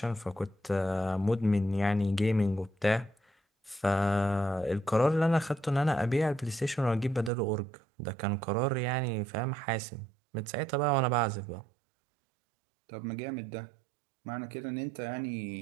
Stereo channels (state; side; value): drops out; left; at 7.3 s